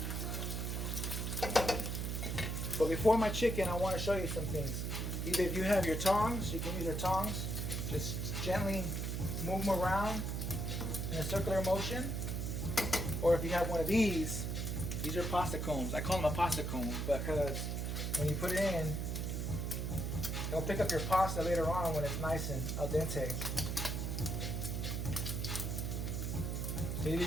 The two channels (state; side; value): noise; right; hum, 2 dB below the sound